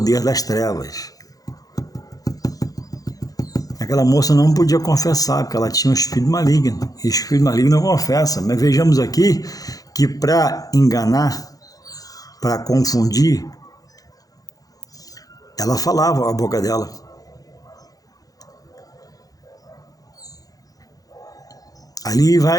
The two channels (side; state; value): right; late; 0.17 ms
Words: das trevas. Aquela moça não podia confessar, porque ela tinha um espírito maligno. E o espírito maligno não confessa. Mas vejamos aqui que para enganar, para confundir, ela falava a boca dela. Ali